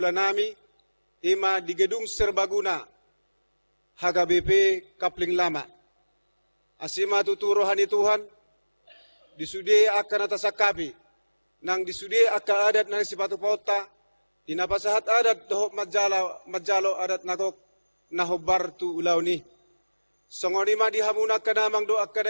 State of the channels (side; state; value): both; inverted; correlation -1.00